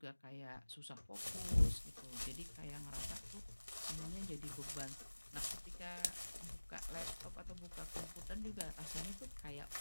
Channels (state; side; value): inverted; both; correlation -1.00